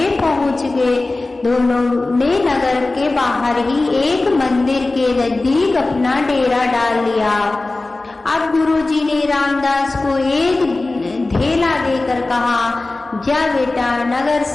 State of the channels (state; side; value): quieter; right; 3.2 dB